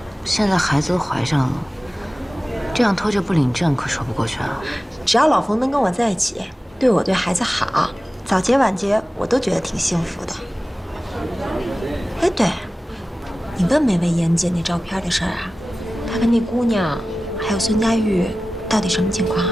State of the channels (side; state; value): both; normal; correlation 0.95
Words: 现在孩子都怀上了，这样拖着不领证可说不过去啊。只要老冯能跟我在一起，对我对孩子好，早结晚结我都觉得挺幸福的。哎，对，你问没问严姐那照片的事儿啊？她跟那姑娘还有孙佳玉到底什么情况